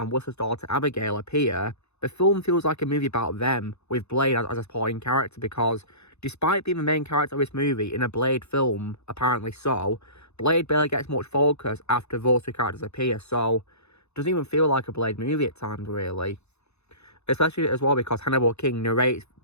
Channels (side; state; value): right; late; 0.81 ms